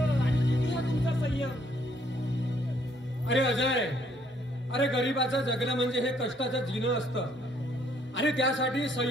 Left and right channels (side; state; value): both; normal; correlation 0.67